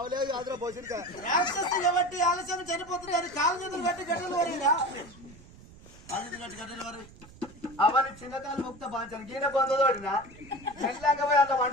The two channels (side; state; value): right; noise; rumble, 21 dB below the sound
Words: ఆదర పోసిన రాక్షసి కాబట్టి ఆలస్యం చనిపోతుంది అది కాలు చేతులు కట్టి గడ్డలు వరిగా కాలు చేతులు కట్టి గడ్డలు వరి అవన్నీ చిన్నకాలు ముక్త బాంచాను గీన పొందదోడినా మెల్లంగా పోయి అంత